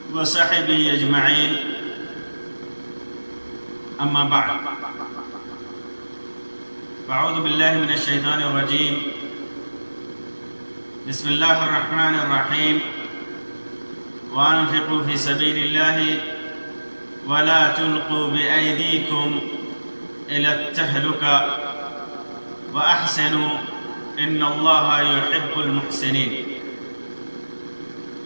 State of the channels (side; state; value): both; inverted; correlation -1.00